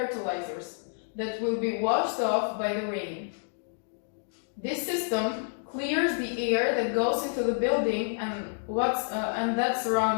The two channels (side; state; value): right; silent; digital silence